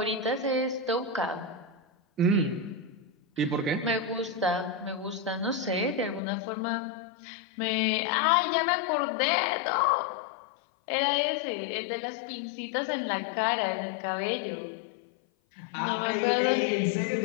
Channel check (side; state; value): right; drops out; at 6.2 s